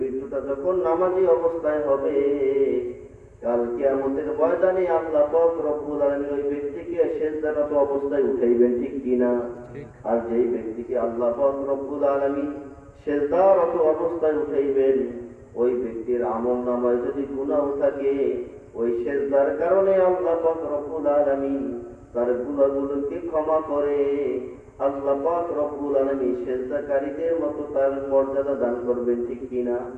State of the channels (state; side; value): identical; both; correlation 1.00